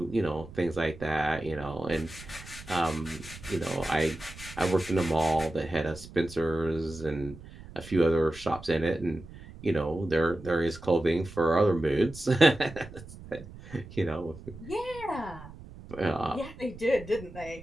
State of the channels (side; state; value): right; noise; rumble, 16 dB below the sound